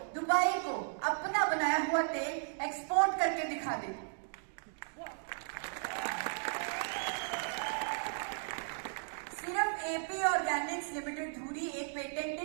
दुबई को अपना बनाया हुआ तेल एक्सपोर्ट करके दिखा दे। सिर्फ AP ऑर्गेनिक्स लिमिटेड धुरी एक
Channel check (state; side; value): silent; left; digital silence